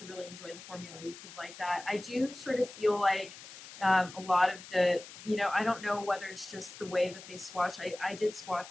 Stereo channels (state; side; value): noise; left; hiss, 15 dB below the sound